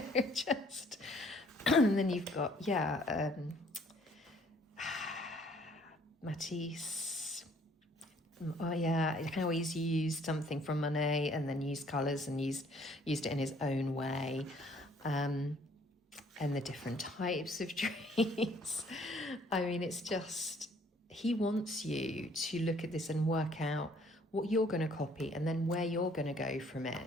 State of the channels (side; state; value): both; normal; correlation 0.61